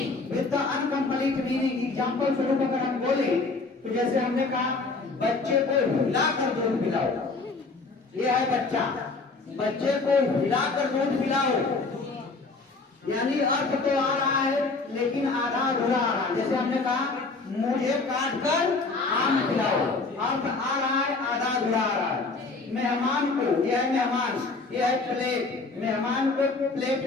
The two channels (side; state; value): right; quieter; 3.8 dB